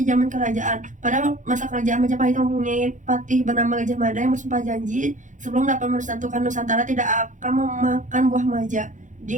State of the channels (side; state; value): left; late; 0.36 ms